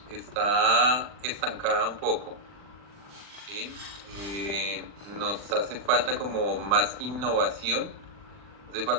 está estancada un poco, ¿sí? Eh, Nos hace falta como más innovación. Hace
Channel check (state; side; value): late; left; 40 ms